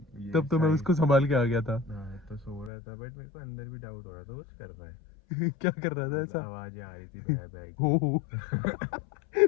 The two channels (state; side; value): drops out; right; at 2.7 s